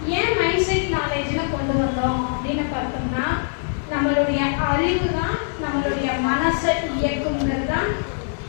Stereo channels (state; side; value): silent; right; digital silence